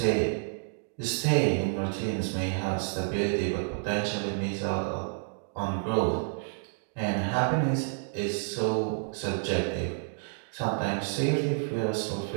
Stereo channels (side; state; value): left; silent; digital silence